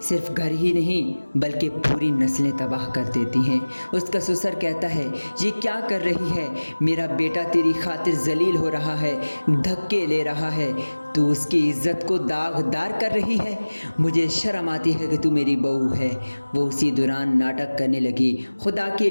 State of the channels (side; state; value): both; inverted; correlation -1.00